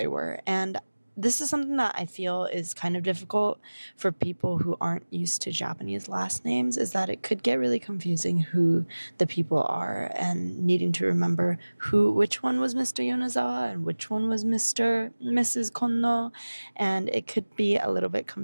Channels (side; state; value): both; inverted; correlation -1.00